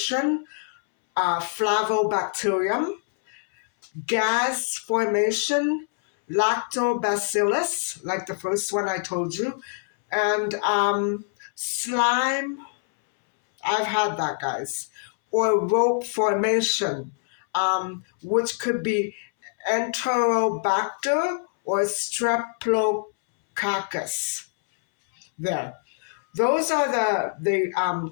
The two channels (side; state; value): right; silent; 62 dB below the other